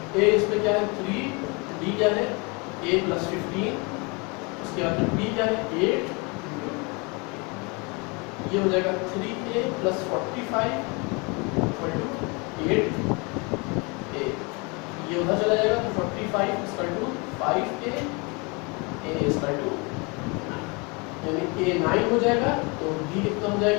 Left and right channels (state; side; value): quieter; right; 29.7 dB